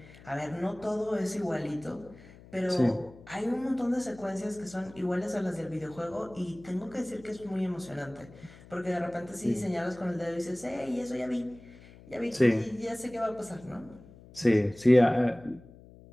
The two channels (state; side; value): noise; left; hum, 21 dB below the sound